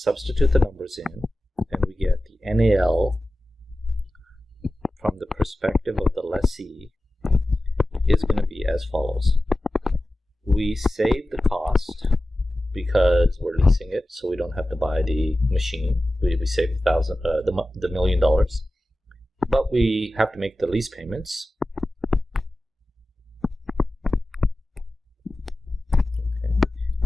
the numbers in, and we get the NAL from the perspective of the lessee is going to be as follows. We save the cost because we're leasing it, so we don't have to buy the machine. We save the $1 million, but we have to make the lease payments. Okay.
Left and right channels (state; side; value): normal; both; correlation 0.95